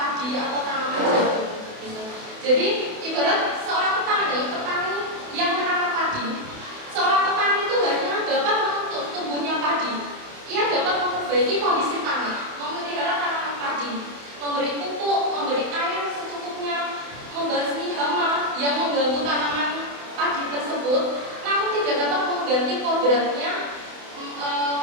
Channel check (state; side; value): late; left; 28 ms